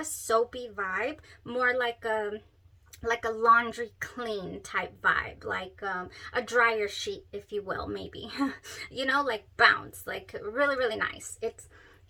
soapy vibe, more like a laundry clean type vibe, like a dryer sheet, if you will, maybe. Like bounce, like really, really nice. It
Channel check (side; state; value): both; identical; correlation 1.00